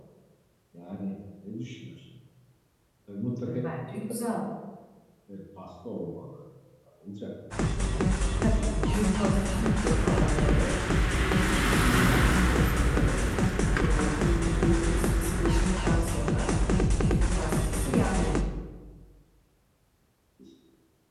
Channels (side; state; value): both; identical; correlation 1.00